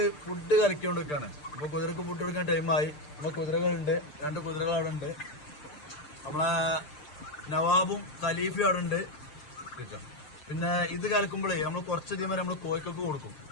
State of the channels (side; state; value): right; late; 6.7 ms